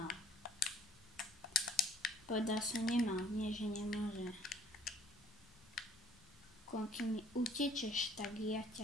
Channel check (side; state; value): left; noise; rumble, 25 dB below the sound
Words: Povedal som nemal, nie že nemôže. Keď mi utečeš, tak ja